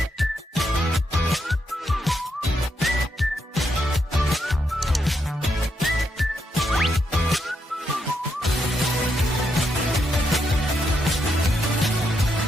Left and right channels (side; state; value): both; normal; correlation 0.80